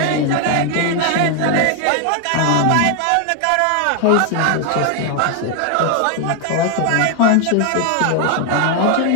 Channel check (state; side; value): different; both; correlation 0.00